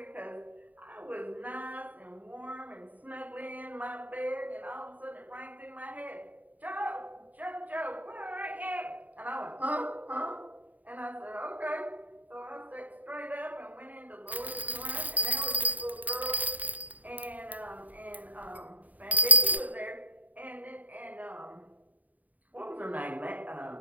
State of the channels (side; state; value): left; late; 0.076 ms